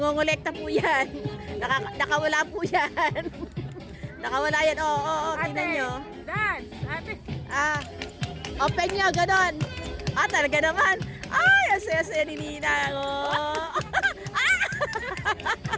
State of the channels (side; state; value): both; identical; correlation 1.00